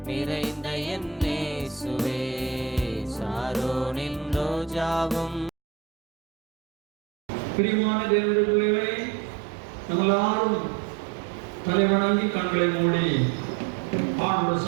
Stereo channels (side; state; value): left; drops out; at 5.5 s